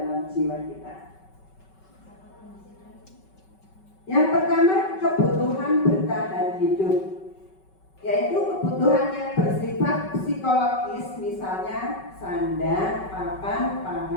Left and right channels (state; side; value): late; right; 5.3 ms